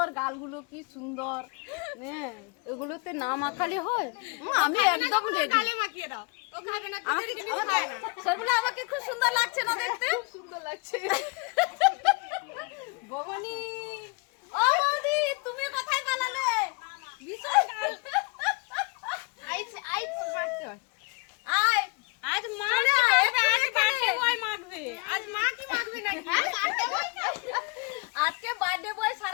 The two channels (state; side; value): quieter; right; 30.8 dB